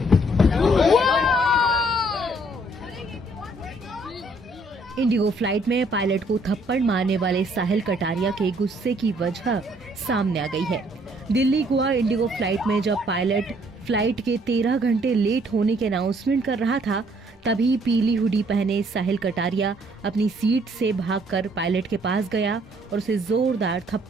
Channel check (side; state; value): both; normal; correlation 0.65